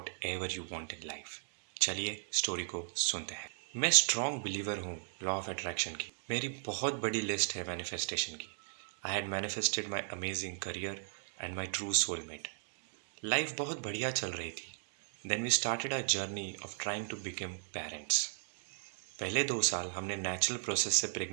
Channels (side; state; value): left; silent; digital silence